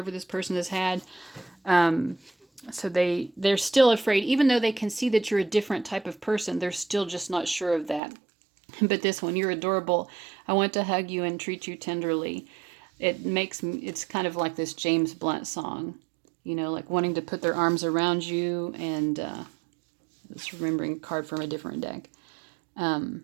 this person has had. So they're still afraid, even though they can see that you're a different type of person, they're still just not sure of that. But this one, you're adorable. I want to hug you and treat you tenderly. It's kind of like this James Blunt song, like wanting to put their arms around you, and just remembering a card from a different deck.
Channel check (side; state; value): left; drops out; at 8.0 s